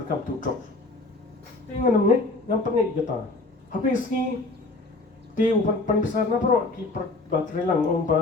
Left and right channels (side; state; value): right; quieter; 3.2 dB